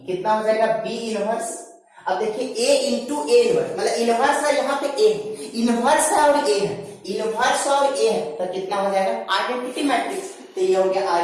कितना हो जाएगा, बी इनवर्स। अब देखिए ए इंटू ए इनवर्स, मतलब इनवर्स है, यहाँ पे ए इनवर्स है और ए है, इनवर्स और ए है, तो कितना हो जाएगा, आइडेंटिटी मैट्रिक्स। तो ये हो गया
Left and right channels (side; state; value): both; identical; correlation 1.00